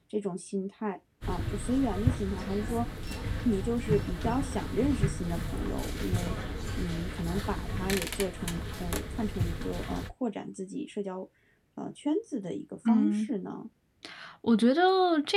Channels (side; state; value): both; identical; correlation 1.00